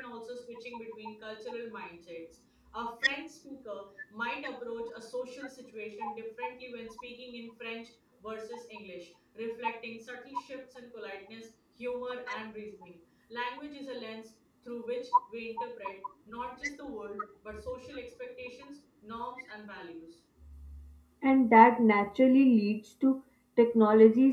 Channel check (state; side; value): identical; both; correlation 1.00